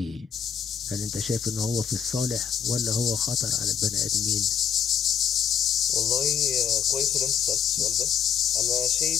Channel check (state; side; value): quieter; right; 8.0 dB